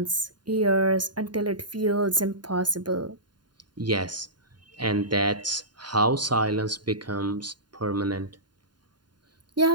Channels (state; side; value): late; left; 0.70 ms